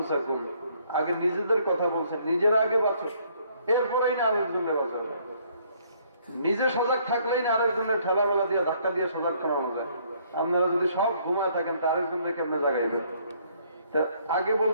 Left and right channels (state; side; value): inverted; both; correlation -0.65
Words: আগে নিজেদের কথা বলছেন, নিজেরা আগে বাঁচো, এরপরেই না আরেকজনের বাঁচাও। নিজে সজাগ থাকলেই না আরেকজনের ঠেলা মেলা দিয়ে ধাক্কা দিয়ে সজাগ করানো যায়। আপনারা যদি সব ঘুমায় থাকেন তা আরেকজনের কেমনে জাগাইবেন? তা আগে